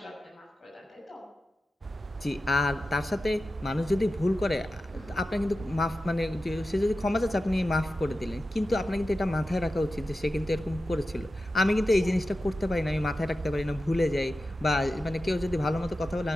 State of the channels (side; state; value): both; normal; correlation 0.93